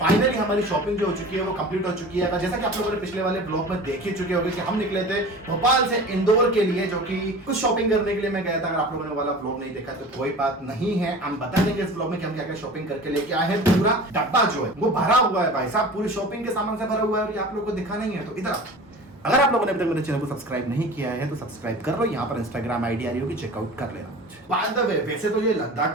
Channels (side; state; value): both; normal; correlation 0.38